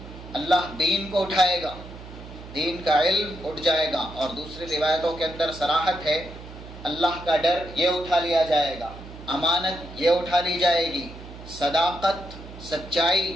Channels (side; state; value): right; noise; hum, 15 dB below the sound